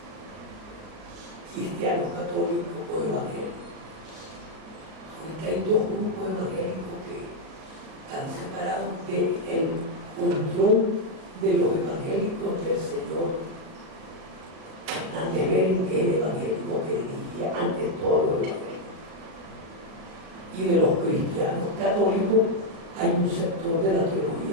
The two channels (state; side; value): late; left; 38 ms